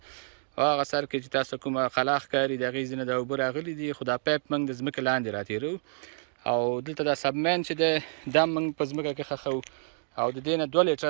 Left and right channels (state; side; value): silent; left; digital silence